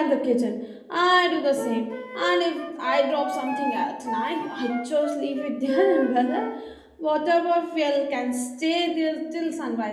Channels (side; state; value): both; identical; correlation 1.00